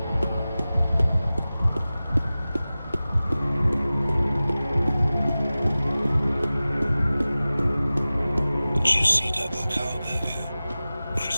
Juicy double cow burger,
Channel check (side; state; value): both; inverted; correlation -0.97